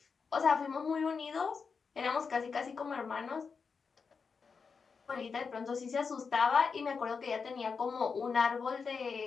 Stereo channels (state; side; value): quieter; right; 5.4 dB